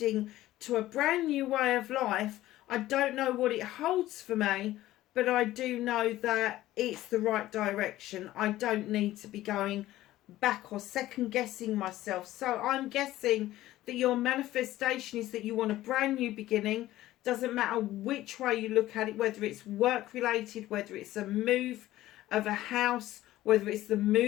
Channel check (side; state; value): right; quieter; 15.3 dB